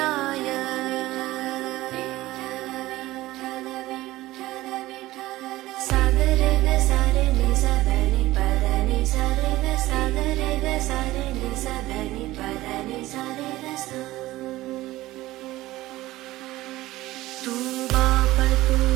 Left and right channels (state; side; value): quieter; left; 17.3 dB